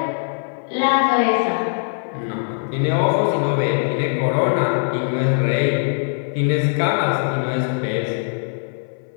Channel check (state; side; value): silent; right; 61 dB below the other